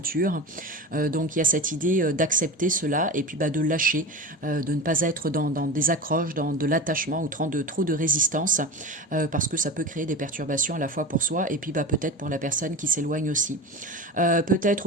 Donc il y a cette idée d'accepter cela et puis de lâcher, de ne pas être dans des accroches, dans de l'attachement ou trop de résistance, parce que ça peut créer des perturbations à la fois pour soi et puis peut-être pour la personne qui s'éloigne aussi. Peut-être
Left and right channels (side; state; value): both; normal; correlation 0.28